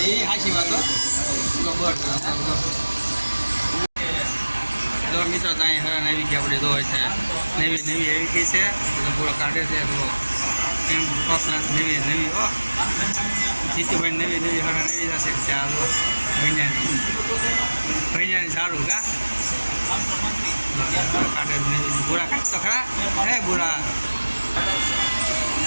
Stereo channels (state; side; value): inverted; both; correlation -1.00